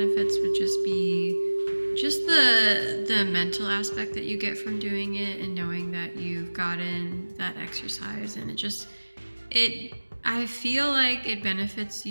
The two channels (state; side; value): inverted; both; correlation -1.00